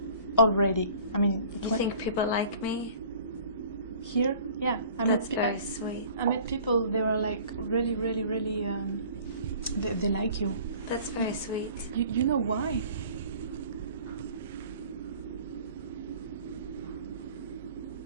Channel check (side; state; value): both; inverted; correlation -0.48